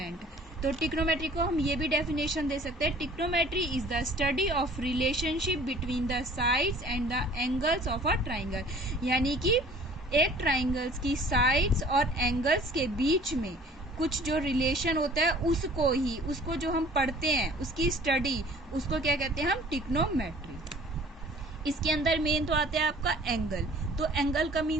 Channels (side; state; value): both; normal; correlation 0.51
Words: तो ट्रिग्नोमेट्री को हम ये भी डेफिनेशन दे सकते हैं, trigonometry is the study of relationship between the sides and the angles of a triangle, यानी कि एक ट्राइंगल्स की साइड्स और एंगल्स के बीच में कुछ जो रिलेशन होता है उसको जो हम पढ़ते हैं, उसकी स्टडी, उसको क्या कहते हैं हम? ट्रिग्नोमेट्री। इसके अंदर मेन तो आता है आपका एंगल। तो एंगल का